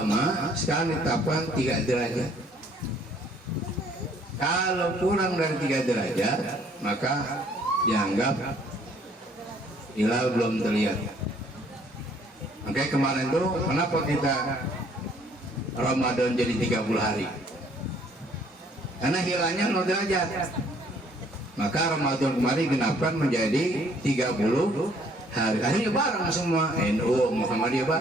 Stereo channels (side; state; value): both; normal; correlation 0.61